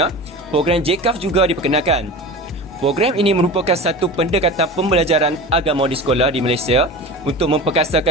JCAF juga diperkenalkan. Program ini merupakan satu pendekatan pembelajaran agama di sekolah di Malaysia untuk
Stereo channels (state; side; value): normal; both; correlation 0.32